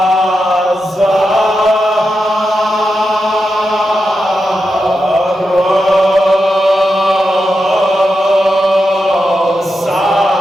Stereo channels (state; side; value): normal; both; correlation 0.88